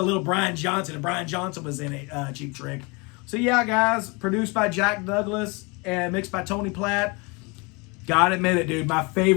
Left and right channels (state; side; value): quieter; right; 28.9 dB